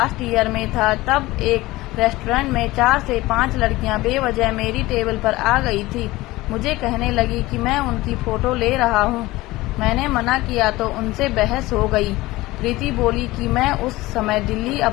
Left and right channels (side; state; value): right; quieter; 19.1 dB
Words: ईयर में था, तब एक रेस्टोरेंट में 4 से 5 लड़कियां बेवजह मेरी टेबल पर आ गई थी। मुझे कहने लगी कि मैं उनकी फोटो ले रहा हूं। मैंने मना किया तो उनसे बहस हो गई। प्रीति बोली कि मैं उस समय दिल्ली